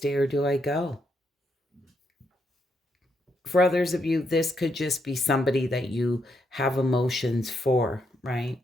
or do I go? For others of you, this could just be somebody that you have emotions for, right?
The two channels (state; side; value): normal; both; correlation 0.78